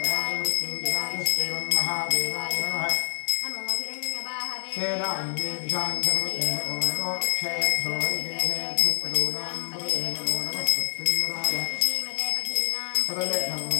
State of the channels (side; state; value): right; silent; digital silence